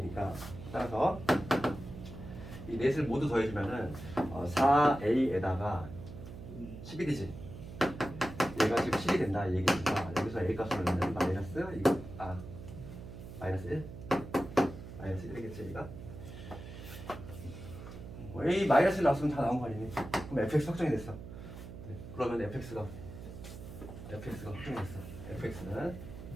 따라서 이 넷을 모두 더해주면은 4a에다가 11이지. 얘가 지금 7이 된다 이 얘기니까 여기서 a 값을 넣으면 마이너스 1? 마이너스 1이겠지 얘가. a 마이너스 1 나왔으면 다 나온 거 아니니? 그럼 fx 확정이 됐어. 그러면 fx가 확정이 됐어. fx는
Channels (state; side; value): noise; right; hum, 12 dB below the sound